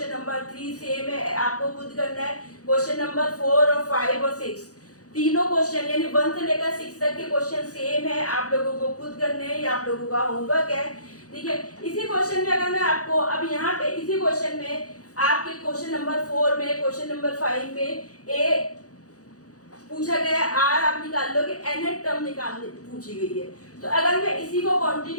नंबर 3 सेम है, आपको खुद करना है। क्वेश्चन नंबर 4 और 5 और 6 तीनों क्वेश्चन यानी 1 से लेकर 6 तक के क्वेश्चन सेम है, आप लोगों को खुद करने हैं, ये आप लोगों का होमवर्क है। ठीक है, इसी क्वेश्चन में अगर मैं आपको अब यहाँ पे इसी क्वेश्चन में आपके क्वेश्चन नंबर 4 में, क्वेश्चन नंबर 5 में पूछा गया है आर आप निकाल लोगे, nth टर्म निकालने पूछी गई है। तो अगर मैं इसी को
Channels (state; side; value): late; right; 0.67 ms